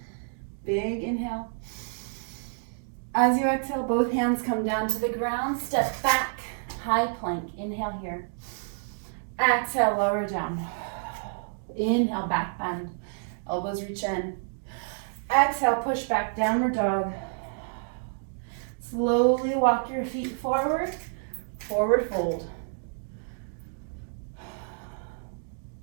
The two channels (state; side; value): silent; left; digital silence